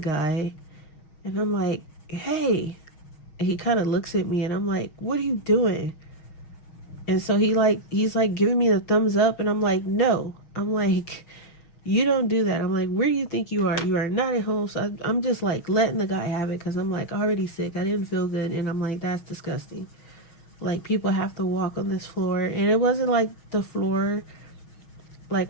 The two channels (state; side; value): late; right; 6.3 ms